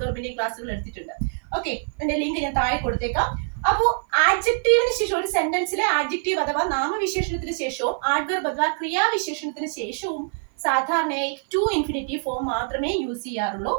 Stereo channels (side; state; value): left; silent; 55 dB below the other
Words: ക്ലാസ്സുകൾ എടുത്തിട്ടുണ്ട്. ഓക്കെ, എന്റെ ലിങ്ക് ഞാൻ താഴെ കൊടുത്തേക്കാം. അപ്പോൾ ആഡ്ജക്റ്റീവിന് ശേഷം, ഒരു സെന്റൻസിലെ ആഡ്ജക്റ്റീവ് അഥവാ നാമവിശേഷണത്തിന് ശേഷവും ആഡ്വെർബ് അഥവാ ക്രിയാവിശേഷണത്തിന് ശേഷവും സാധാരണയായി ടു ഇൻഫിനിറ്റീവ് ഫോം മാത്രമേ യൂസ് ചെയ്യാറുള്ളൂ.